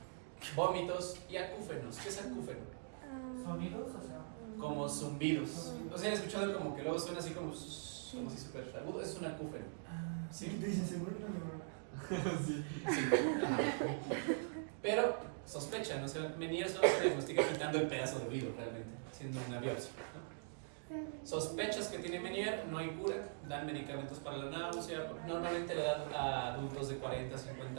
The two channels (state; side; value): silent; left; digital silence